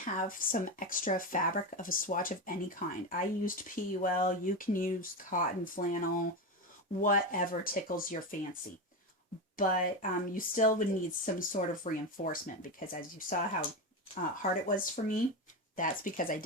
have some extra fabric of a swatch of any kind. I used PUL, you can use cotton, flannel, whatever tickles your fancy. But you still would need some sort of reinforcement, because as you saw how hard it was for me, that's because I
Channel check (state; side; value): normal; both; correlation 0.16